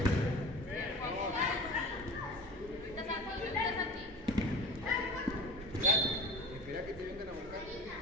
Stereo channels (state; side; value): normal; both; correlation 0.37